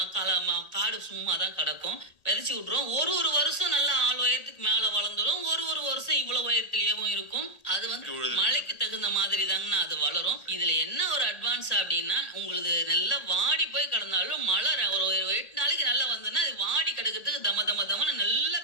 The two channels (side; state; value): right; late; 1.8 ms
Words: காடு சும்மா தான் கிடக்கும், விதைச்சு விட்டுருவோம். ஒரு வருஷம் நல்லா 4 உயரத்துக்கு மேல வளர்ந்துடும், ஒரு வருஷம் இவ்வளவு உயரத்திலேயும் இருக்கும். அது வந்து மழைக்கு தகுந்த மாதிரி தாங்கண்ணா அது வளரும். இதுல என்ன ஒரு அட்வான்ஸ் அப்படின்னா, உங்களுக்கு நல்லா வாடி போய் கிடந்தாலும் மழை ஒரு 8 நாளைக்கு நல்லா வந்ததுன்னா அது வாடி கிடக்கிறதுக்கு தமன்னு நல்லா